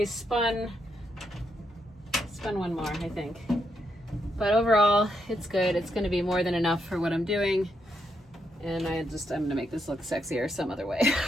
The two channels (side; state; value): both; normal; correlation 0.80